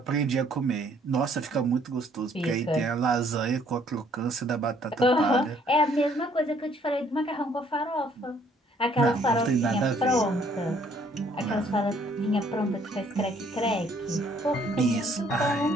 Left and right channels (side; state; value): both; normal; correlation 0.63